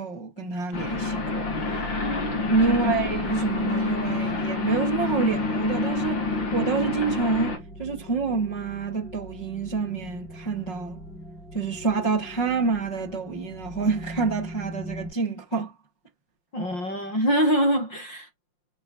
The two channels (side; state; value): right; late; 5.5 ms